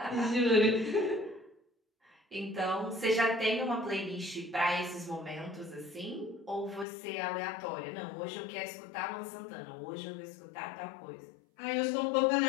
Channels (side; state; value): right; drops out; at 6.9 s